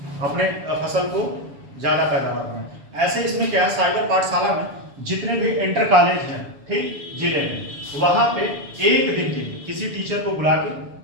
अपने फसल को ज़्यादा पैदावार बनाएं। ऐसे इसमें क्या है, साइबर पाठशाला में जितने भी इंटर कॉलेज हैं, ठीक, जिले में, वहाँ पे एक दिन के लिए किसी टीचर को बुला के,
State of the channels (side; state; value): left; late; 7.0 ms